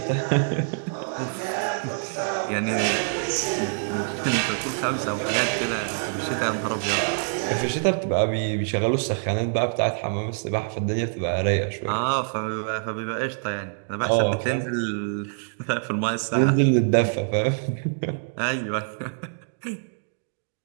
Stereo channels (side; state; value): left; silent; digital silence